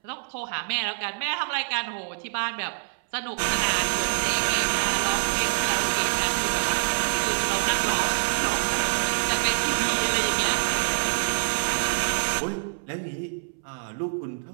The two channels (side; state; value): left; silent; 61 dB below the other